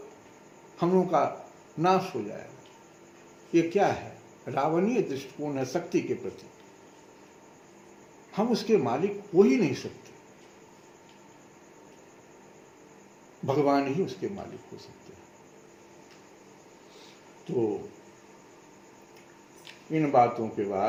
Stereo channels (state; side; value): identical; both; correlation 1.00